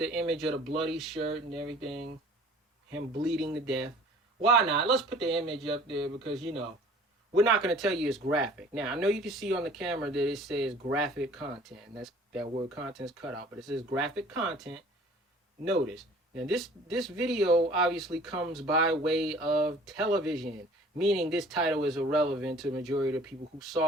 image of the bloody shirt and everything. Him bleeding to death. Why not? Let's put the image up there because, you know, we're not going to tell you it's graphic. Now, I know you can see on the camera that it says graphic content. And that word content is cut out. But it says graphic content. Notice. Now, this video obviously comes by way of television, meaning this title is irrelevant to the majority of the people who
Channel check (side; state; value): both; normal; correlation 0.50